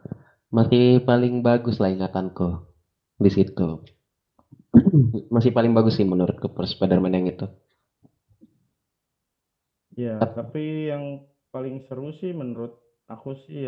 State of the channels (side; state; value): both; identical; correlation 1.00